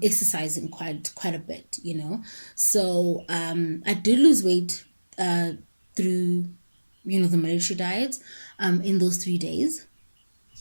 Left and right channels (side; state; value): both; inverted; correlation -1.00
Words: exercising quite a bit, you know. So I did lose weight through, you know, the military diet in those 3 days.